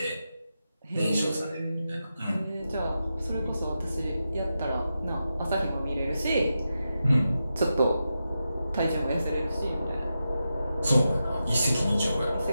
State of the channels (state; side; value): inverted; both; correlation -0.89